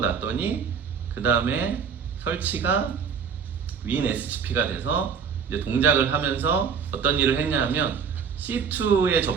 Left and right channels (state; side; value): quieter; left; 6.6 dB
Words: 그 다음에 설치가 WinSCP가 돼서 이제 동작을 하면서 어떤 일을 했냐 하면 C2에